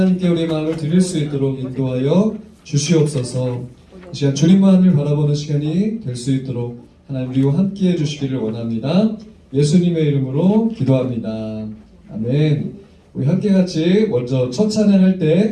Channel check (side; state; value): both; identical; correlation 1.00